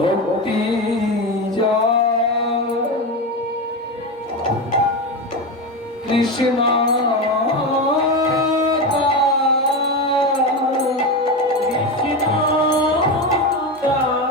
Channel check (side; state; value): both; normal; correlation 0.17